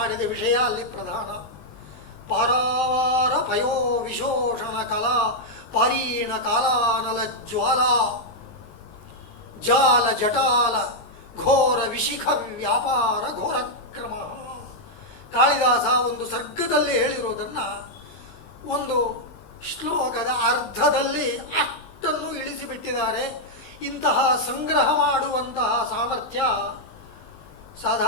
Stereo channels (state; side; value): late; right; 19 ms